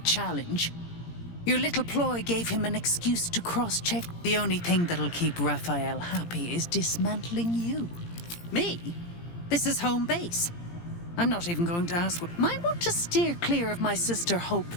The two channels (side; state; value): right; late; 17 ms